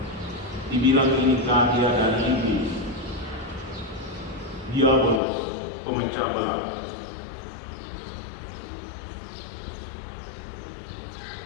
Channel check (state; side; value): drops out; right; at 5.2 s